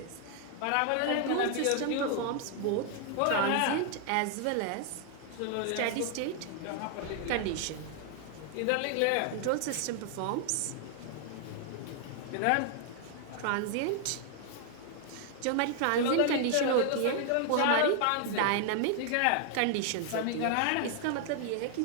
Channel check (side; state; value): both; different; correlation 0.00